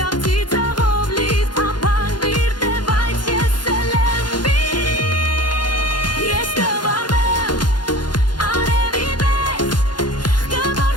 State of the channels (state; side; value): late; right; 0.71 ms